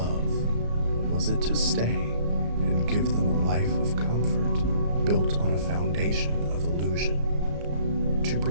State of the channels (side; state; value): left; late; 34 ms